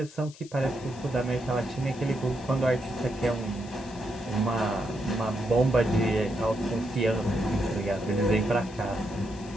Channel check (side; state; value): left; noise; hiss, 21 dB below the sound